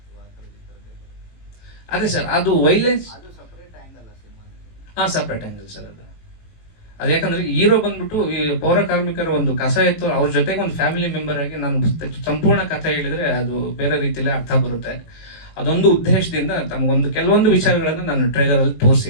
ಅದೇ ಸರ್, ಅದು ವೈಲೆನ್ಸ್ ಸಪ್ರೇಟ್ ಆಂಗಲ್ ಸರ್. ಅದು ಯಾಕಂದ್ರೆ ಹೀರೋ ಬಂದ್ಬಿಟ್ಟು ಈ ಪೌರ ಕಾರ್ಮಿಕರ ಒಂದು ಕಸ ಇತ್ತು, ಅವ್ರ ಜೊತೆಗೆ ಒಂದು ಫ್ಯಾಮಿಲಿ ಮೆಂಬರ್ ಆಗಿ ನಾನು ಸಂಪೂರ್ಣ ಕಥೆ ಹೇಳಿದ್ರೆ ಅದು ಬೇರೆ ರೀತಿಯಲ್ಲಿ ಅರ್ಥ ಬರುತ್ತೆ. ಅದೊಂದು ಉದ್ದೇಶದಿಂದ ತಮಗೊಂದು ಕೆಲವೊಂದು ವಿಚಾರಗಳನ್ನ ನಾನು ಟ್ರೈಲರ್ ಅಲ್ಲಿ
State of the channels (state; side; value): late; right; 18 ms